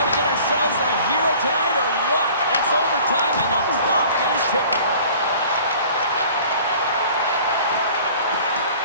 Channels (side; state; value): both; inverted; correlation -0.48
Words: to get ourselves a hero tonight or what? It's overtime and the clock is ticking.